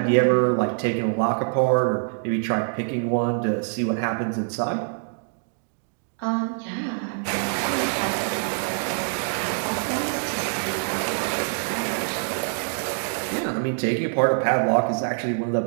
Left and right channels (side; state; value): left; silent; 62 dB below the other